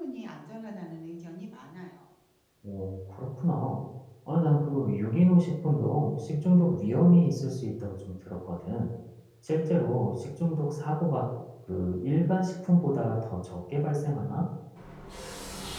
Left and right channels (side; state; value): both; identical; correlation 1.00